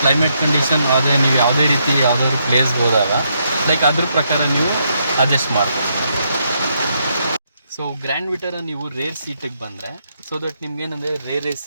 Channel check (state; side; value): inverted; both; correlation -0.77